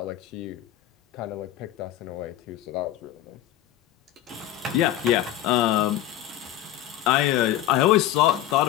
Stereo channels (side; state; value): right; quieter; 13.0 dB